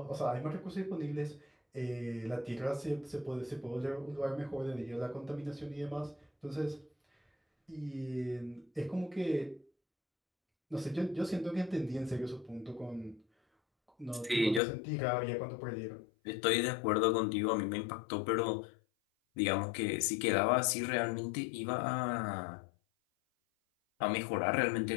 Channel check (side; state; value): right; drops out; at 14.6 s